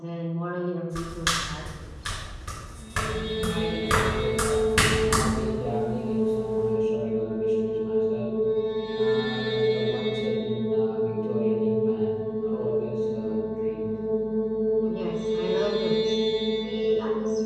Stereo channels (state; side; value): identical; both; correlation 1.00